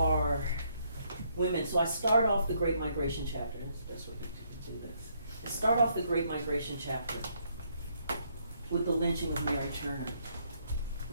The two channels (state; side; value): inverted; both; correlation -0.71